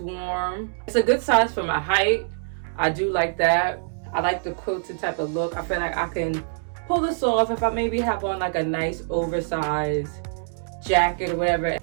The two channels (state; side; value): silent; left; digital silence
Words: warm. It's a good size for my height. I do like that. I like the quilted type of look. I feel like I can pull this off if I maybe have on like a nice oversized jacket or whatever.